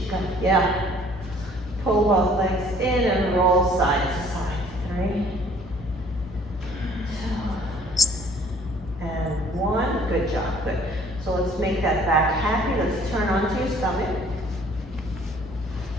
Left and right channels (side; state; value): both; normal; correlation 0.56